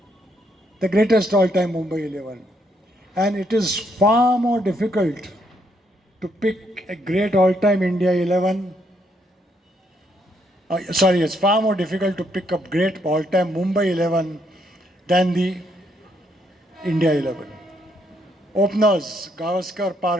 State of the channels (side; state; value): both; normal; correlation 0.74